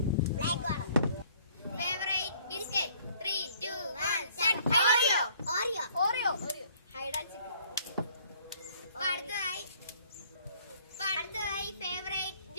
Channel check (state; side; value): inverted; both; correlation -0.58